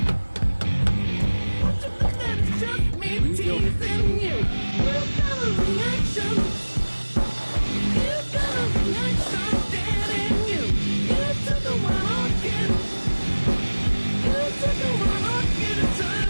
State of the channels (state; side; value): inverted; both; correlation -1.00